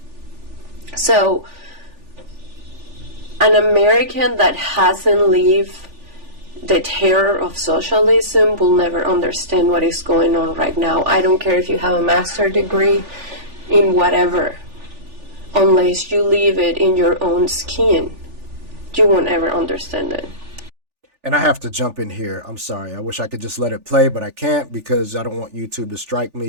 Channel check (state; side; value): late; left; 3.4 ms